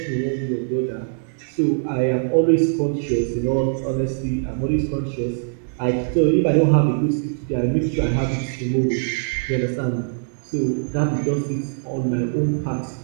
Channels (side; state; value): left; silent; digital silence